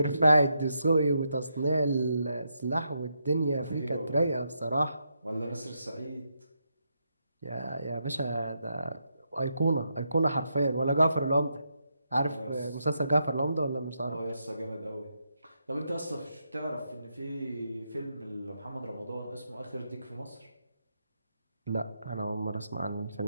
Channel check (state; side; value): inverted; both; correlation -0.81